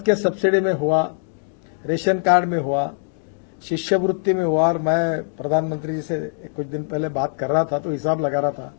के सब्सिडी में हुआ, रेशन कार्ड में हुआ, शिष्यवृत्ति में हुआ, और मैं प्रधानमंत्री जी से कुछ दिन पहले बात कर रहा था तो हिसाब लगा रहा था,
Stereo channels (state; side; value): silent; right; digital silence